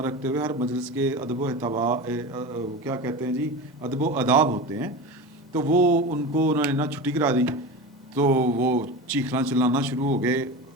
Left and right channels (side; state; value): both; normal; correlation 0.28